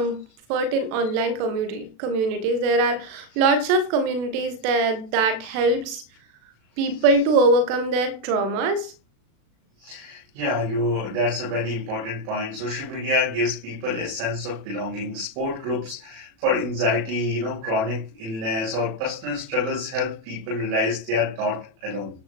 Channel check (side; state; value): left; late; 36 ms